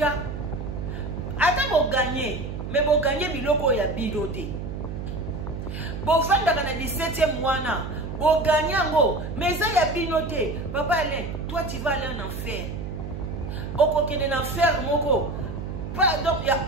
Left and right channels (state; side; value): noise; right; hum, 6 dB below the sound